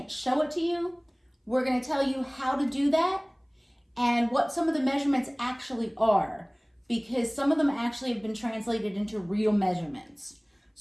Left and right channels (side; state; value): both; identical; correlation 1.00